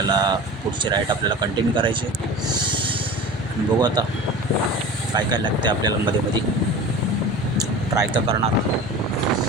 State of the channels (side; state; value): both; normal; correlation 0.35